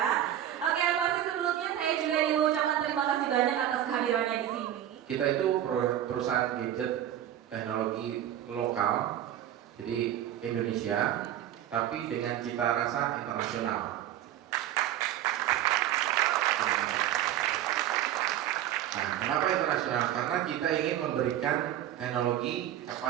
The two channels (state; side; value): quieter; left; 11.7 dB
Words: Oke, pasti sebelumnya saya juga ingin mengucapkan terima kasih banyak atas kehadirannya di sini. Kita itu perusahaan gadget teknologi lokal, jadi Indonesia, tapi dengan cita rasa internasional. Nah, kenapa internasional? Karena kita ingin memberikan teknologi